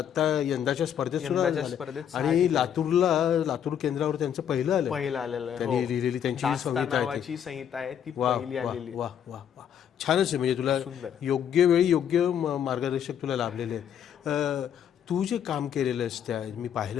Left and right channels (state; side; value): quieter; right; 9.1 dB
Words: यंदाच्या स्पर्धेत सुद्धा झाल्या. आणि लातूर केंद्रावर त्यांचं पहिलं आलेलं त्यांनी लिहिलेली त्यांची संहिता आहे ती पहिली आलेली. वा वा वा. छानच आहे. म्हणजे तुला योग्य वेळी योग्य मार्गदर्शक तुला लाभलेले आहेत. तू जे काम केलेलं आहेस त्या मी